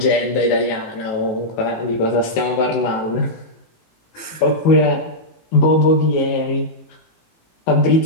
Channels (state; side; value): late; right; 19 ms